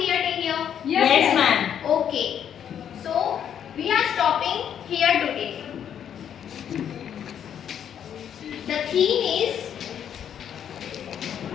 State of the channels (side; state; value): right; quieter; 9.0 dB